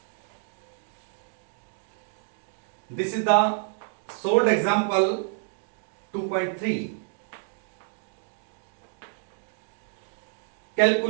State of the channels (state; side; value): silent; left; digital silence